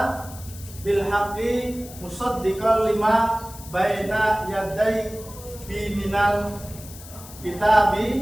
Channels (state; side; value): noise; left; hiss, 17 dB below the sound